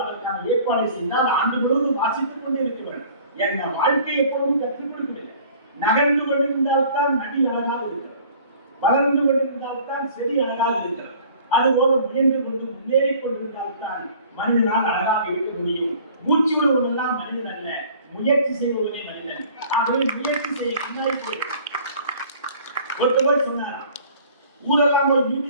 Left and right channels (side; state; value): both; inverted; correlation -0.50